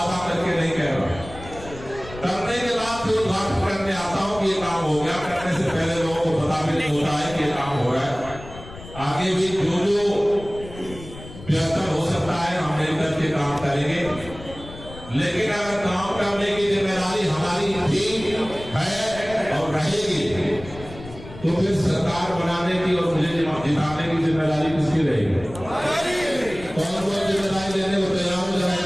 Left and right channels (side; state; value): left; noise; rumble, 15 dB below the sound